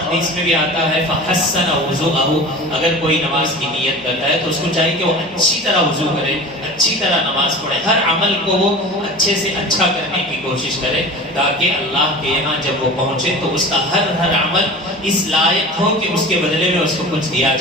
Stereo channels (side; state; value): left; noise; hum, 27 dB below the sound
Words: میں بھی آتا ہے فحسن وضوءہ، اگر کوئی نماز کی نیت کرتا ہے تو اس کو چاہیے کہ وہ اچھی طرح وضو کرے، اچھی طرح نماز پڑھے، ہر عمل کو وہ اچھے سے اچھا کرنے کی کوشش کرے، تاکہ اللہ کے یہاں جب وہ پہنچے تو اس کا ہر عمل اس لائق ہو کہ اس کے بدلے میں اس کو کچھ دیا